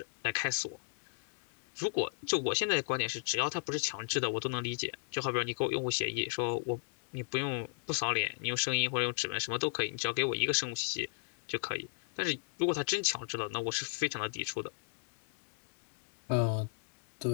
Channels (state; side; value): silent; right; 54 dB below the other